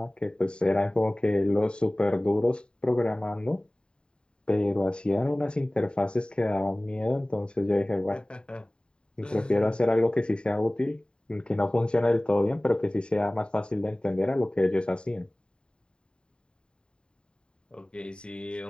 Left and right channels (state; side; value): late; right; 0.050 ms